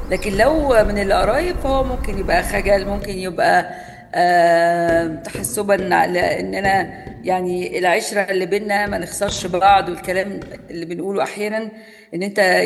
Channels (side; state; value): both; identical; correlation 1.00